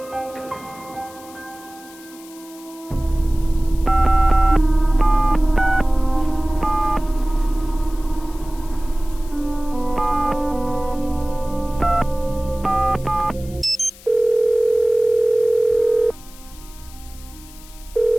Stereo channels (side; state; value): left; noise; hiss, 21 dB below the sound